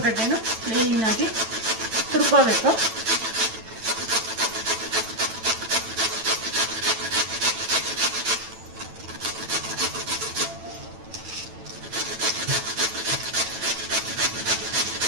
ಗಡ್ಡೆನೂ ಕ್ಲೀನಾಗಿ ತುರ್ಕೋಬೇಕು.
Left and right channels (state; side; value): late; left; 9.0 ms